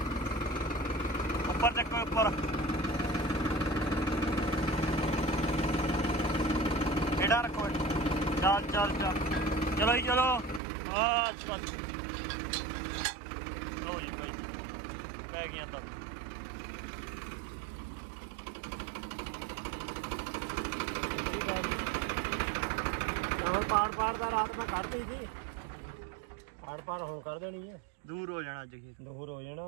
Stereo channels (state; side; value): drops out; left; at 10.6 s